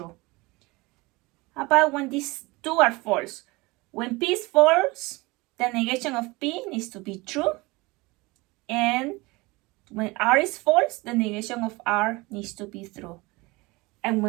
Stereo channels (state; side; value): quieter; left; 23.4 dB